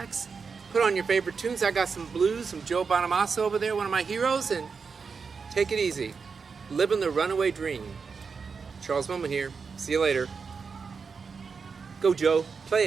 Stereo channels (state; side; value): quieter; left; 5.3 dB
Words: put on your favorite tunes. I got some blues, some Joe Bonamassa over there, one of my heroes, and take it easy. Living the runaway dream. Charles Moman here. See you later. Go, Joe. Play